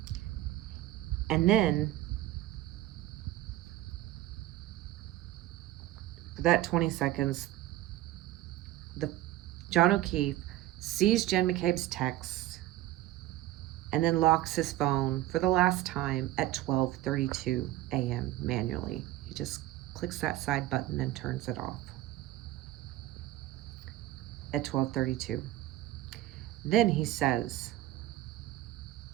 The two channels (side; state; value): left; quieter; 14.7 dB